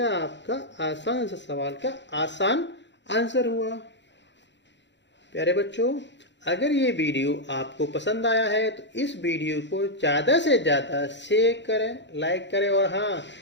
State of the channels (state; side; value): late; right; 0.52 ms